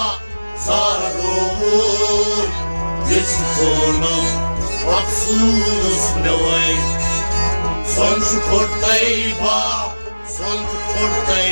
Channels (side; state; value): both; inverted; correlation -1.00